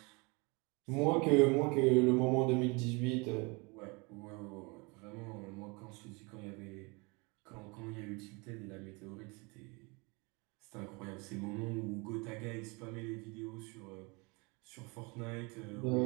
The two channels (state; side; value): quieter; left; 28.6 dB